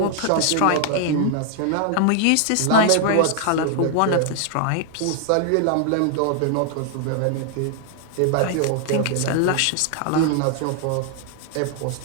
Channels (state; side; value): different; both; correlation 0.00